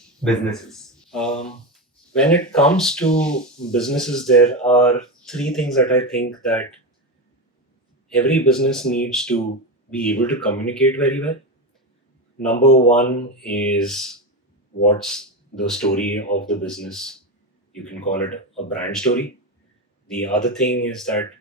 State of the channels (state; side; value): normal; both; correlation 0.16